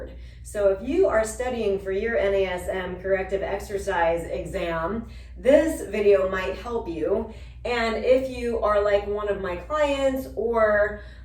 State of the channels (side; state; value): both; identical; correlation 1.00